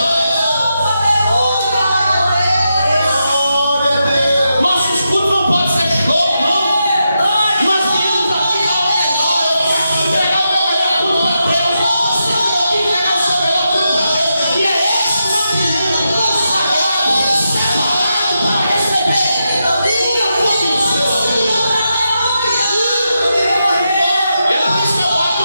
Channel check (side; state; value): both; inverted; correlation -0.86